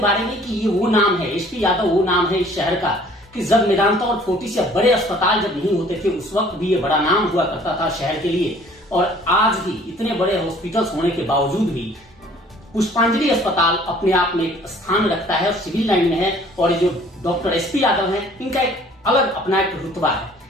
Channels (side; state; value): both; normal; correlation 0.54